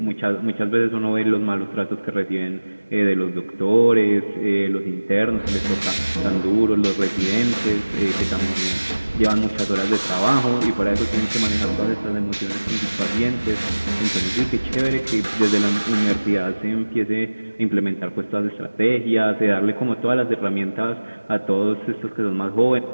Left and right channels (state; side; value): inverted; both; correlation -1.00